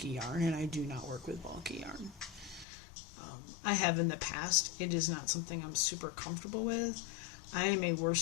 yarn, and I do not work with bulky yarn. I have in the past. It is not something I'm super comfortable with. I am a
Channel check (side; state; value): right; drops out; at 2.7 s